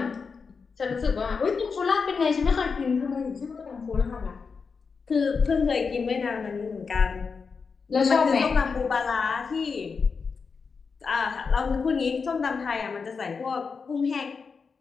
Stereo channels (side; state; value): right; quieter; 5.2 dB